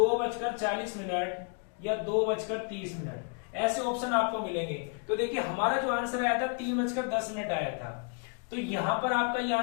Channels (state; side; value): quieter; right; 39.9 dB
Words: मिनट, या 2:30 मिनट, ऐसे ऑप्शन आपको मिलेंगे। तो देखिए हमारा जो आंसर आया था 3:10 मिनट आया था। तो यहां पर आपका ये